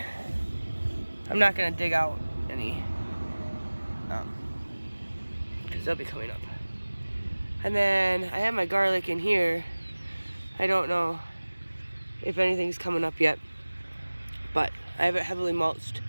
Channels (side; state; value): both; inverted; correlation -1.00